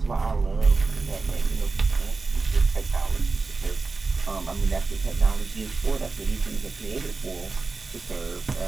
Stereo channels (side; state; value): left; quieter; 4.0 dB